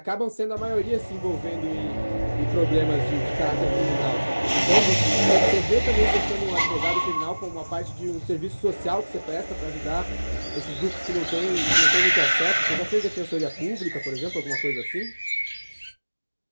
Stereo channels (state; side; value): inverted; both; correlation -1.00